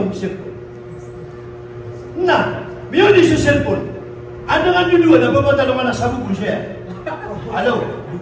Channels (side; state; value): both; identical; correlation 1.00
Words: cellphone. Na, music sa cellphone. Ano nga nyo doon? Nababatalo na sa bubun siya. Hello?